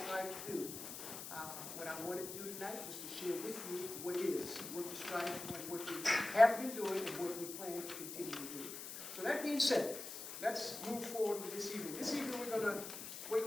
strive to do. What I wanted to do tonight was to share with you what is, what we strive for, and what we have been doing, and what we plan to continue to do. So that being said, let's move forward with this evening. This evening we're going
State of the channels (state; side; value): noise; left; hiss, 8 dB below the sound